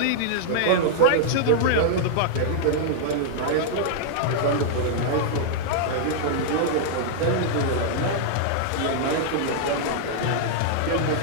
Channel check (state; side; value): different; both; correlation -0.01